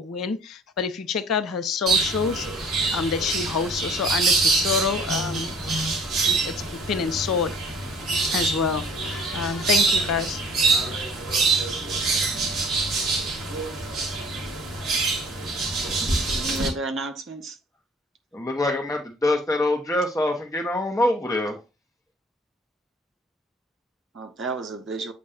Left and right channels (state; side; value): normal; both; correlation 0.52